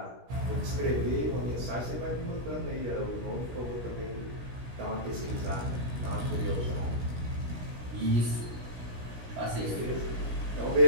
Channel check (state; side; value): late; left; 16 ms